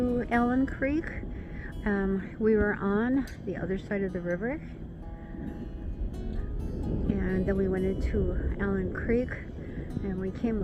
Allen Creek, we were on the other side of the river. And then we went into Allen Creek, and we came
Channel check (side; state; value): both; identical; correlation 1.00